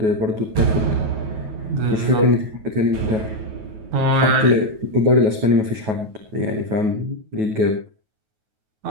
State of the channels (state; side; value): late; left; 9.3 ms